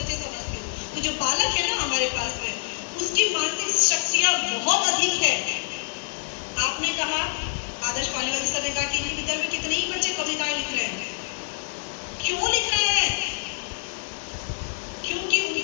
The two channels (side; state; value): right; silent; 61 dB below the other